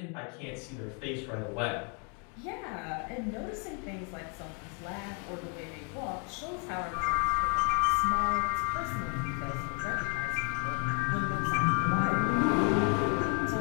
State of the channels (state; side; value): quieter; right; 35.0 dB